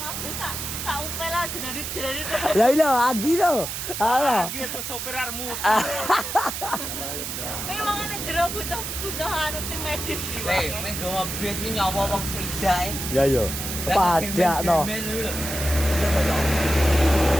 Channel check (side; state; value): right; noise; hiss, 5 dB below the sound